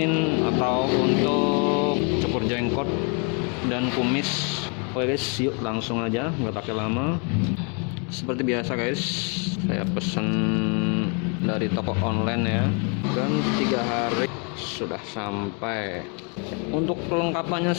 atau untuk cukur jenggot dan kumis. Oke guys, yuk langsung aja, nggak pakai lama. Seperti biasa guys, saya pesan dari toko online ya, dan 3 hari sudah sampai. Untuk kelengkapannya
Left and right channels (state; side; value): quieter; right; 36.6 dB